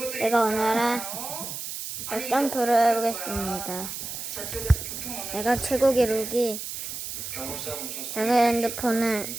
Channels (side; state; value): right; noise; hiss, 7 dB below the sound